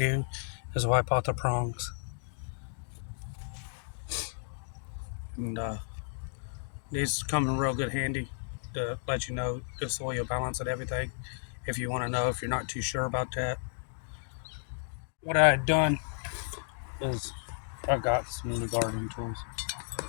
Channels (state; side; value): silent; right; digital silence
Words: is wipe out the prongs. And these come in real good handy to let you know the soil balance and everything if you want to know, if you're not too sure about that. What I had done is I've got some new gardening tools.